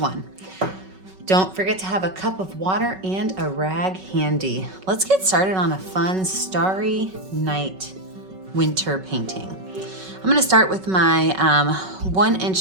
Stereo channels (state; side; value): late; left; 5.3 ms